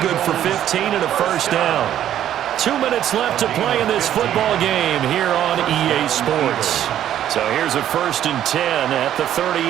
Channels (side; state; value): left; quieter; 11.1 dB